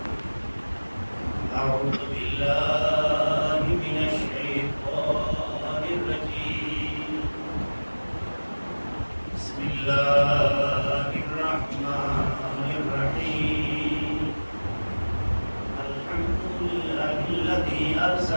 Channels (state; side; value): inverted; both; correlation -1.00